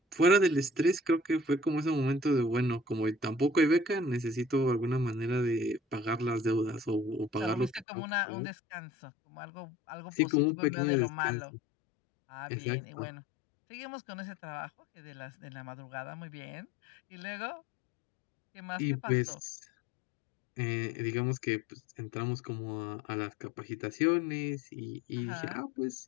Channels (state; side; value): drops out; right; at 7.9 s